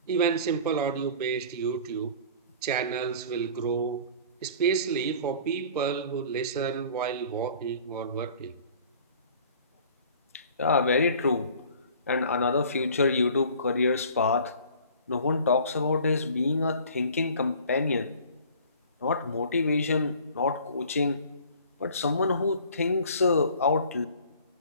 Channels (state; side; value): inverted; both; correlation -0.48